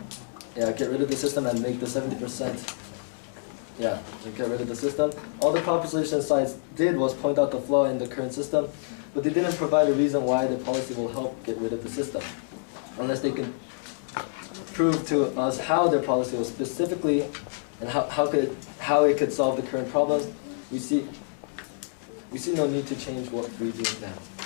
Get rid of the system and make the 70%. Yeah, get rid of the system. All the proposition sides did was point out the flaw in the current system, but they didn't provide a reason why the policy will help get rid of the system, unless they can prove to us how their policy was specifically and how it could solve the current problems. We see no need to change what we do now.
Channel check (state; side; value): silent; right; digital silence